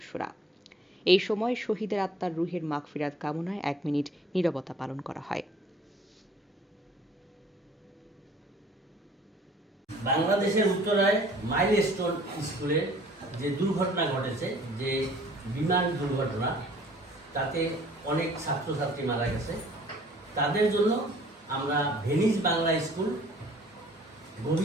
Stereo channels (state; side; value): normal; both; correlation 0.54